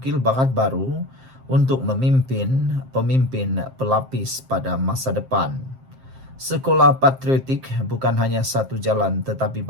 bakat baru untuk memimpin pemimpin pelapis pada masa depan. Sekolah patriotik bukan hanya satu jalan tetapi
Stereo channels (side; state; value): left; late; 7.6 ms